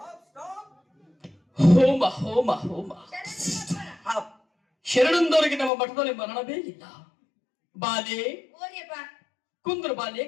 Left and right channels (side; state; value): right; drops out; at 5.7 s